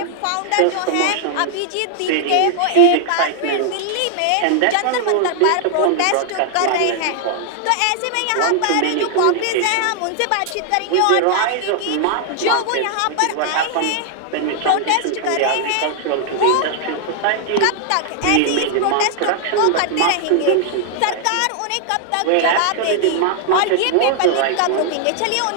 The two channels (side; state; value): both; different; correlation 0.00